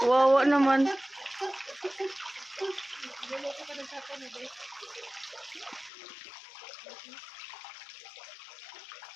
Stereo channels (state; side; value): drops out; right; at 5.9 s